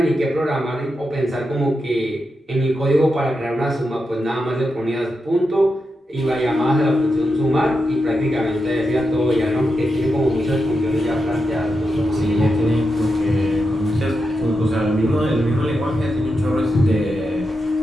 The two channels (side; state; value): both; normal; correlation 0.87